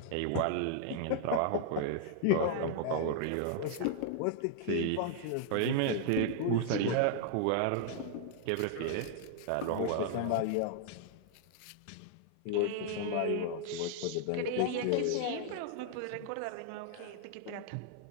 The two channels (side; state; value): both; different; correlation -0.01